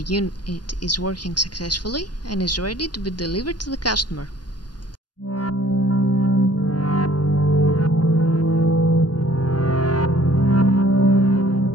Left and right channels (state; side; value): late; right; 0.70 ms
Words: unit is working successfully and is ready to be delivered to the customer.